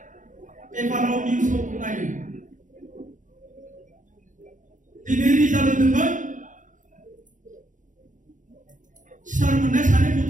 peparau news tu kenanya, di negeri jalan dengan Sarmanda sana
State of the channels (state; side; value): late; left; 0.37 ms